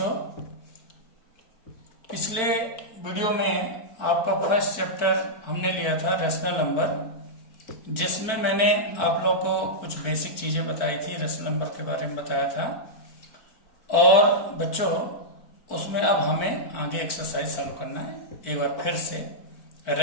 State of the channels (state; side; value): late; right; 4.5 ms